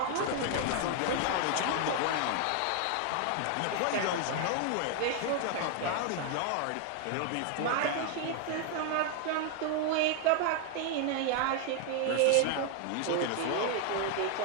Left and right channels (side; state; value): both; different; correlation 0.00